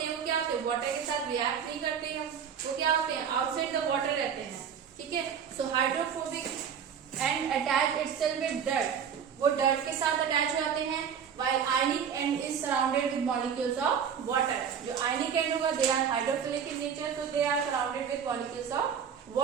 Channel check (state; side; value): quieter; left; 7.6 dB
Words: हैं वो क्या होते हैं? वाटर के साथ रिएक्ट नहीं करते हैं, वो क्या होते हैं? आउटसाइड द वाटर रहते हैं. ठीक है. So hydrophobic end attach itself with dirt, वो डर्ट के साथ अटैच हो जाते हैं. while ionic end is surrounded with molecules of water. जो ionic end होगा they are hydrophilic in nature, so they are surrounded with molecules of